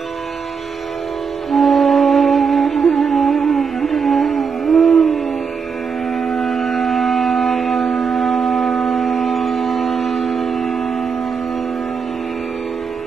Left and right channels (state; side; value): quieter; left; 5.9 dB